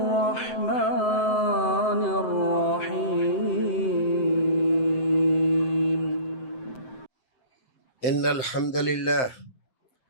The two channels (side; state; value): right; late; 7.7 ms